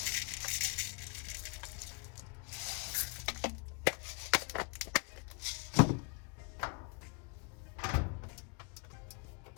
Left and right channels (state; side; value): quieter; right; 32.4 dB